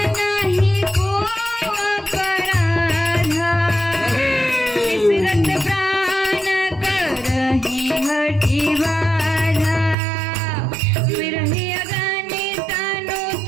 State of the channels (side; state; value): left; drops out; at 10.0 s